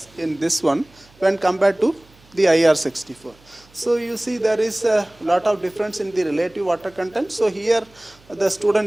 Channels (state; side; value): noise; right; hum, 29 dB below the sound